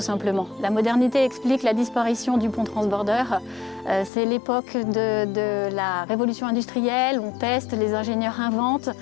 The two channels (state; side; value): drops out; right; at 4.1 s